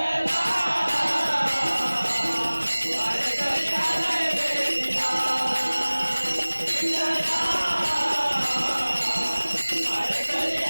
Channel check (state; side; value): inverted; both; correlation -1.00